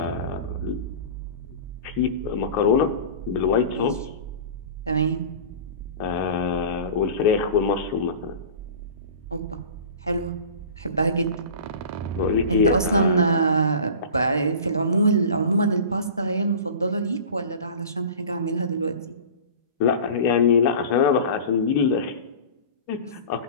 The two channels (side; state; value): both; inverted; correlation -0.37